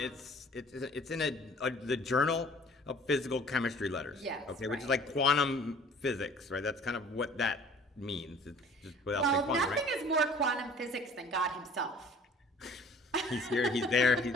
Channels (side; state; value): both; normal; correlation 0.50